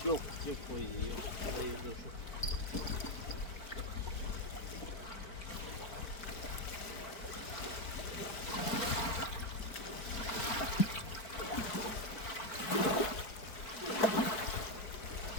Yok, yok koyuyor. Hayırlı olsun.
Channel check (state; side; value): late; right; 4.5 ms